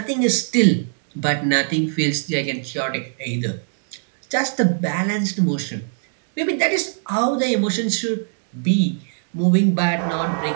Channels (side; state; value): left; silent; 65 dB below the other